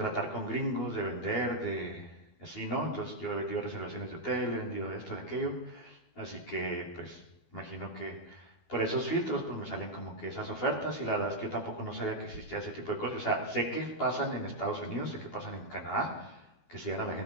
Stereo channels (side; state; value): right; late; 12 ms